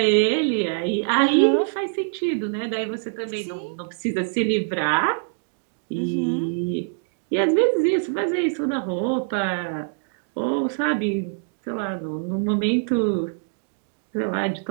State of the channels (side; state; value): left; silent; digital silence